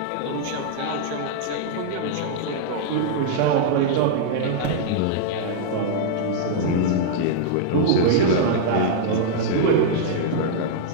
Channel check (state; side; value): different; both; correlation -0.01